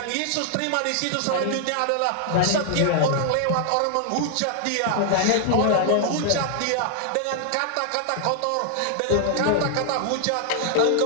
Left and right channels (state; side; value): different; both; correlation 0.00